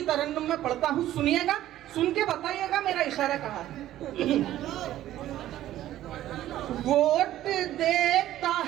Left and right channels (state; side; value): quieter; left; 13.5 dB